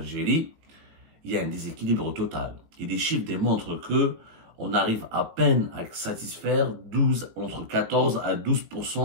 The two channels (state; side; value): late; left; 18 ms